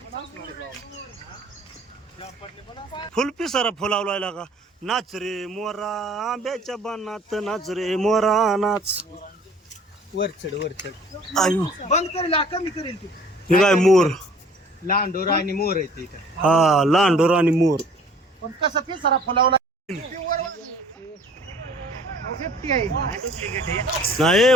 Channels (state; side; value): normal; both; correlation 0.53